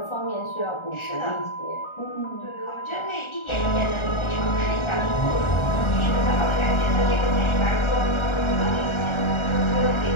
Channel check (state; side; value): late; right; 1.4 ms